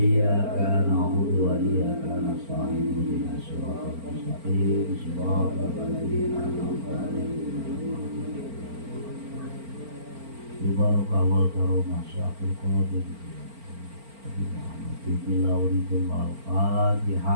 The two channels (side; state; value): left; late; 4.4 ms